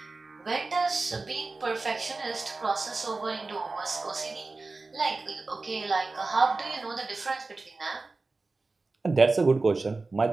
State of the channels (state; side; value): quieter; left; 3.6 dB